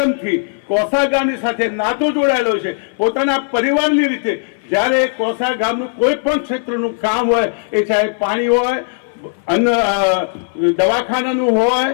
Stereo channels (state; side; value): silent; right; 59 dB below the other